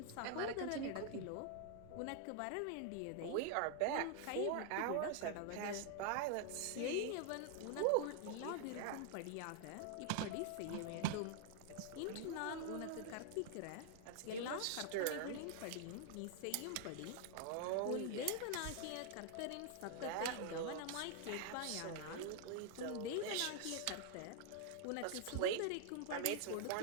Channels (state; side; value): different; both; correlation 0.00